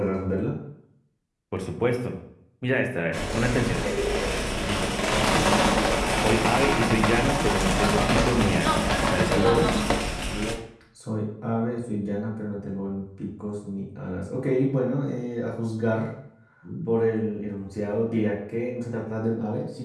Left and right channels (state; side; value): identical; both; correlation 1.00